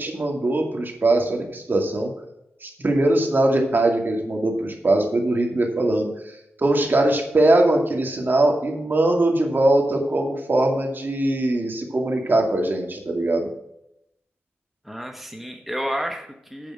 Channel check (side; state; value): both; normal; correlation 0.89